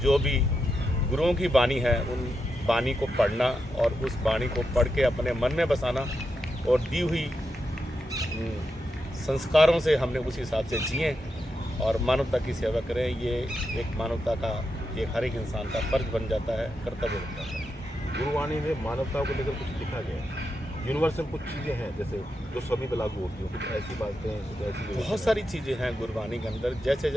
भी गुरुओं की बानी है, उन बानी को पढ़ना और उस बानी को पढ़ के अपने मन में बसाना और दी हुई संस्कारों से हमने उस हिसाब से जिए और मानवता की सेवा करें। ये एक मानवता का, एक हर एक इंसान का फर्ज बन जाता है, कर्तव्य बन जाता है। गुरुवाणी में मानवता को लेकर कुछ लिखा गया है, यूनिवर्सल कुछ चीज़ें हैं जैसे जो सभी पे लागू होती हैं, कुछ ऐसी बातें, कुछ ऐसी बहुत सारी चीज़ें हैं गुरबानी के अंदर। जैसे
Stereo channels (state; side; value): normal; both; correlation 0.86